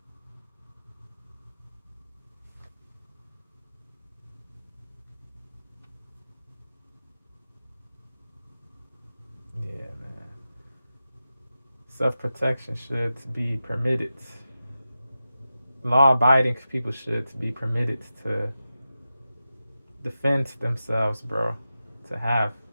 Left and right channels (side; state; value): both; inverted; correlation -0.92